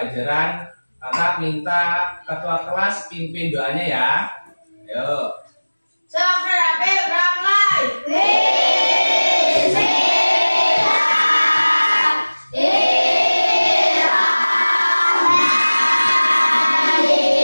kakak minta ketua kelas pimpin doanya ya. Ayo.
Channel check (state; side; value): inverted; both; correlation -1.00